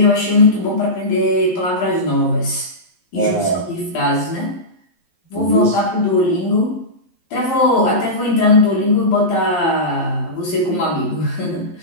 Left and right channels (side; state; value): right; late; 11 ms